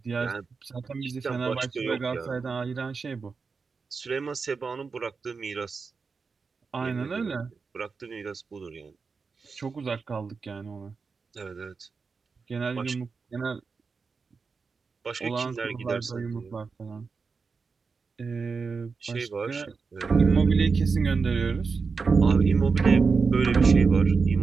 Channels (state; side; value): quieter; left; 4.9 dB